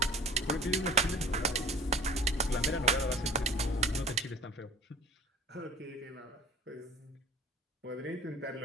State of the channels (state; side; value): normal; both; correlation 0.45